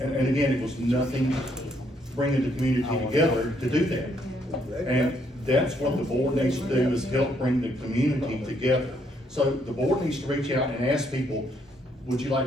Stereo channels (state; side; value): normal; both; correlation 0.71